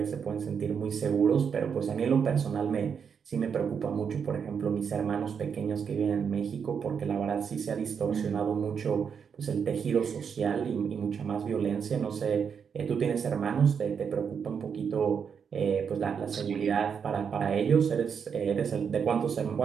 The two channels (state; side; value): quieter; left; 6.8 dB